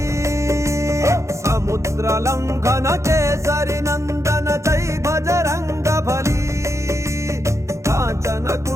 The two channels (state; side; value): late; left; 0.14 ms